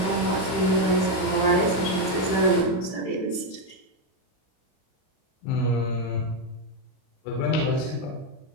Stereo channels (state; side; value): late; right; 38 ms